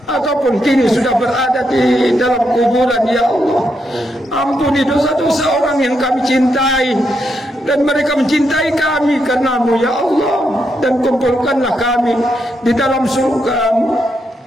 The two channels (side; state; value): both; normal; correlation 0.81